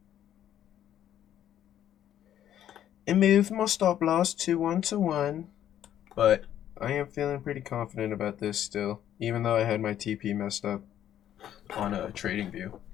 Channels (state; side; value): quieter; right; 11.0 dB